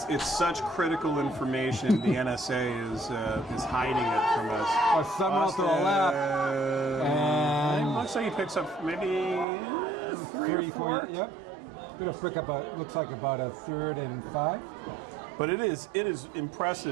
such critical information. The NSA is hiding it from us. Summerall to the left. And looks like he picks up maybe 3, 4, yep. Gonna pick up looks like about a 3rd and 5. But it is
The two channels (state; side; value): drops out; left; at 9.5 s